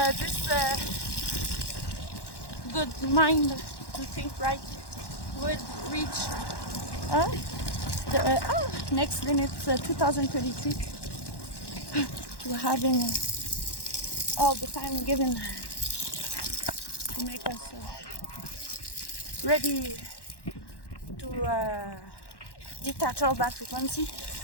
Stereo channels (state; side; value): late; right; 1.1 ms